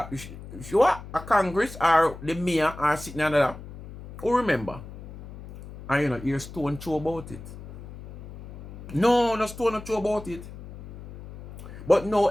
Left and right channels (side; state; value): left; noise; hum, 14 dB below the sound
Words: she what? A Congress or the mayor are sitting under that? Who remember? And you know, hear stone throw about it. No stone no throw about it. But no,